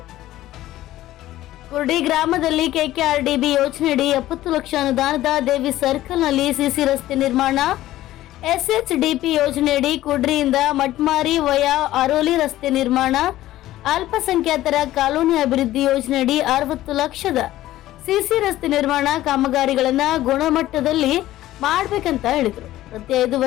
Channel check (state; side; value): quieter; right; 14.9 dB